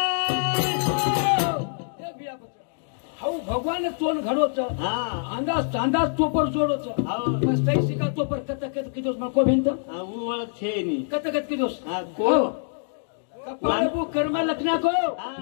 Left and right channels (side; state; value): right; silent; digital silence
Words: हाऊ भगवान तोन घडो छ हाँ अंदाज अंदाज तोपर जोडो छ आओ मस्त शिका तोपर कत कत किदोस मको भिंत हाँ वो वाला छे नी कत कत किदोस हाँ को कपाळ बु कर्म लखना को